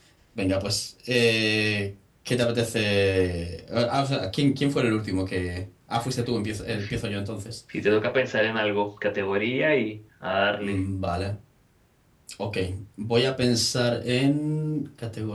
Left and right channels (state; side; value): identical; both; correlation 1.00